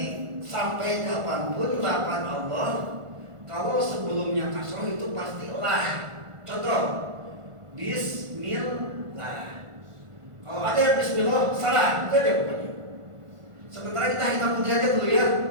sampai kapanpun lafaz Allah kalau sebelumnya kasroh itu pasti lah. Contoh Bismillah. Kalau ada yang Bismillah salah, itu aja pokoknya. Sementara kita hitam putih aja dulu ya.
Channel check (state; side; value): late; left; 1.5 ms